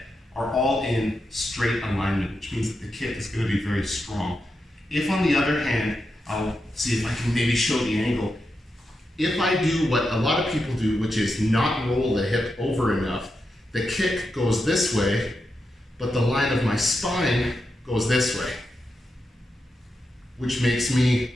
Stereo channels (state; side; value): normal; both; correlation 0.87